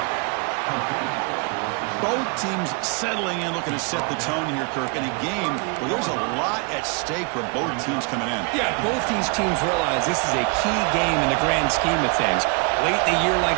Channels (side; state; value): left; quieter; 32.8 dB